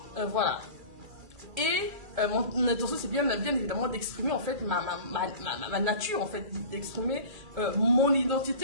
Voilà. Et mon intention, c'est bien évidemment d'exprimer, en fait, ma nature, en fait, d'exprimer mon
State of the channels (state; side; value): late; left; 2.3 ms